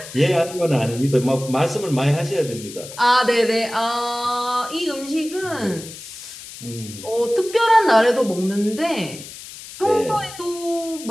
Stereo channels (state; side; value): noise; left; hiss, 14 dB below the sound